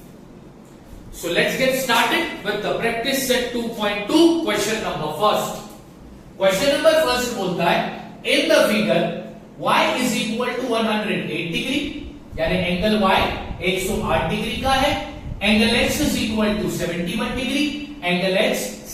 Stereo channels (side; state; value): both; identical; correlation 1.00